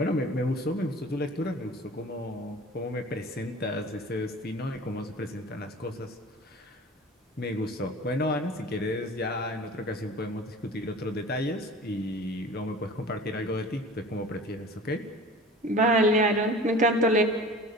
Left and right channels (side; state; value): both; normal; correlation 0.41